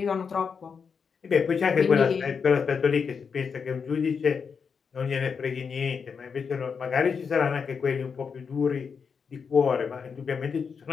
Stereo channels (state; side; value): quieter; right; 6.0 dB